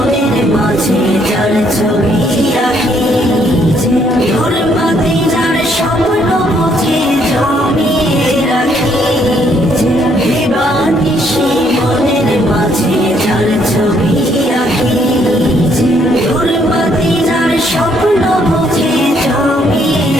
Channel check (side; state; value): both; normal; correlation 0.69